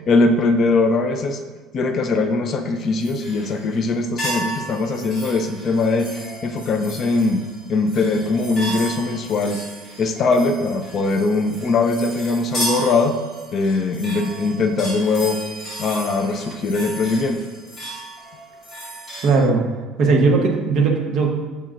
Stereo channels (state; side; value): normal; both; correlation 0.61